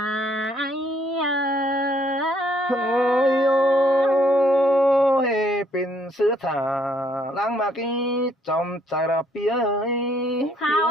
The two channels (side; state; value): both; normal; correlation 0.67